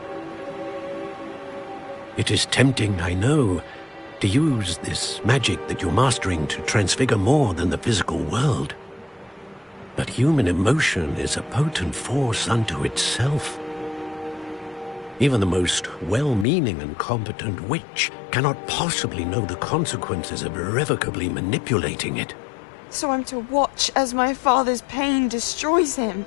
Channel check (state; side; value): drops out; right; at 16.4 s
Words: It is tempting, I know, to use this magic that you're mastering to transfigure more than the physical world. But human emotion is a potent force unto itself. Even the most well-meaning and competent witch cannot possibly know the consequences of irrevocably manipulating it. So I'm to watch as my father's pain destroys him.